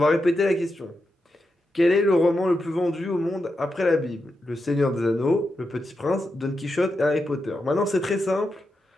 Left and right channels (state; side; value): normal; both; correlation 0.87